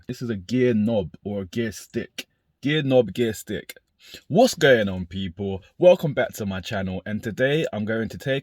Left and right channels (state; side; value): identical; both; correlation 1.00